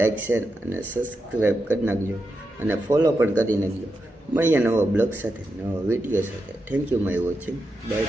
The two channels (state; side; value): normal; both; correlation 0.87